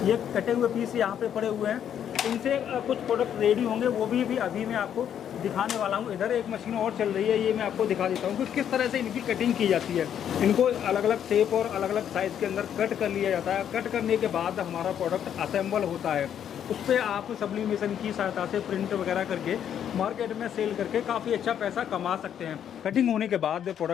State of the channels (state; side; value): quieter; right; 9.3 dB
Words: ये कटे हुए पीस यहाँ पे पड़े हुए हैं। इनसे कुछ प्रोडक्ट रेडी होंगे, वो भी अभी मैं आपको दिखाने वाला हूँ। इधर एक मशीन और चल रही है, ये मैं आपको दिखा देता हूँ कि किस तरह से इनकी कटिंग की जाती है। इनको अलग अलग शेप और अलग अलग साइज़ के अंदर कट कर लिया जाता है। कट करने के बाद हमारा प्रोडक्ट असेंबल होता है। उस पर आप सब्लिमेशन की सहायता से प्रिंट वगैरह करके मार्केट में सेल करके काफ़ी अच्छा पैसा कमा सकते हैं। कटिंग होने के बाद